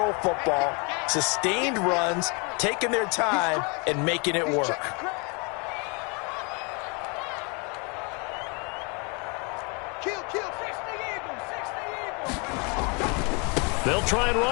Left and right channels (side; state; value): right; quieter; 32.8 dB